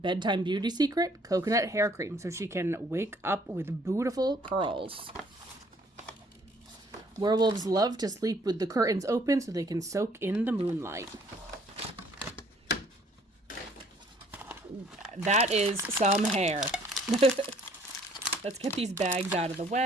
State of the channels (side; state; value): both; normal; correlation 0.60